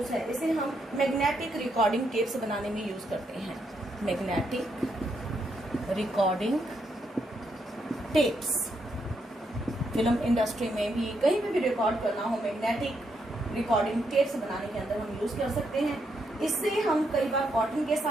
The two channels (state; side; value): normal; both; correlation 0.78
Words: है? इसे हम मैग्नेटिक रिकॉर्डिंग टेप्स बनाने में यूज करते हैं। Magnetic recording tapes, film industry में भी, कहीं पे भी रिकॉर्ड करना हो, मैग्नेटिक रिकॉर्डिंग टेप्स बनाने के अंदर हम यूज कर सकते हैं। इससे हम कई बार कॉटन के